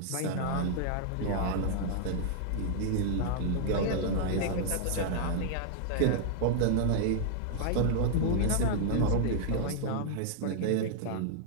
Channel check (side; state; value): both; different; correlation -0.01